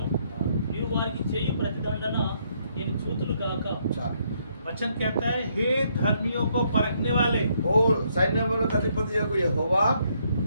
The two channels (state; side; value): inverted; both; correlation -0.72